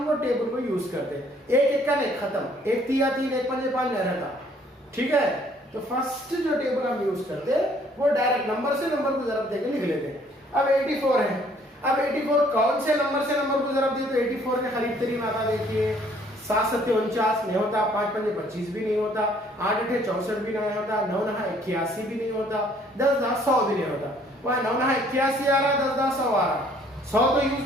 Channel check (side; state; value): both; normal; correlation 0.61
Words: वो टेबल को यूज करते हैं। 1 1 का नहीं खत्म, 1 3 3 1 5 5 नहीं रहता। ठीक है, तो फर्स्ट जो टेबल हम यूज करते हैं वो डायरेक्ट नंबर से नंबर को जरब देके लिख लेते हैं। अब 84 है। अब 84 कौन से नंबर से नंबर को जरब दिए तो 84 के करीब तरीन आता। देखिए 7 7 49 नहीं होता, 5 5 25 भी नहीं होता, 8 8 64 भी नहीं होता, 9 9 81 भी नहीं होता, 10 10 100 भी नहीं होता। वह 9 9 81 आ रहा, 10 10 100 आ रहा। 100 तो यूज